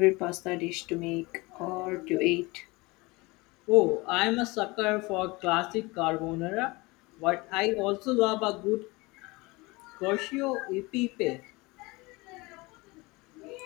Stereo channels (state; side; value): quieter; right; 23.9 dB